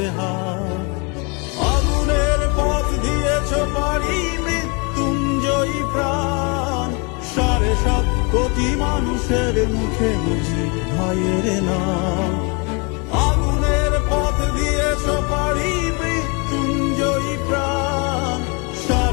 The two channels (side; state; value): right; quieter; 31.6 dB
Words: আগুনের পথ দিয়েছ পারি মৃত্যুঞ্জয়ী প্রাণ, 7.5 কোটি মানুষের মুখে মুজিব ভাইয়ের নাম। আগুনের পথ দিয়েছ পারি মৃত্যুঞ্জয়ী প্রাণ,